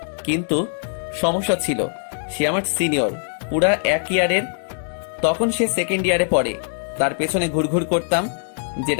কিন্তু সমস্যা ছিল, সে আমার সিনিয়র পুরা 1 ইয়ারের। তখন সে সেকেন্ড ইয়ারে পড়ে। তার পেছনে ঘুরঘুর করতাম,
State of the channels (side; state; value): right; silent; digital silence